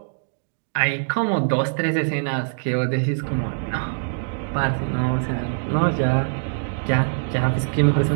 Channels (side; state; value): left; silent; digital silence